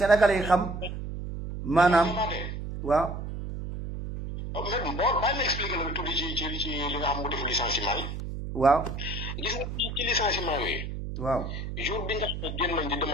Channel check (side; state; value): right; noise; hum, 6 dB below the sound